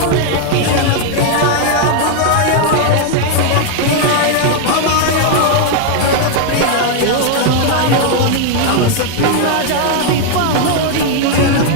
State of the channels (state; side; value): different; both; correlation 0.00